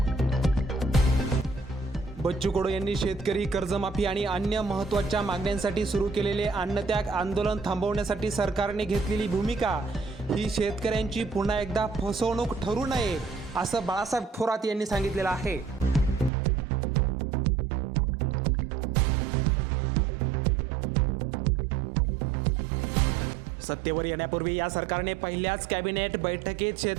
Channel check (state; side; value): drops out; left; at 16.3 s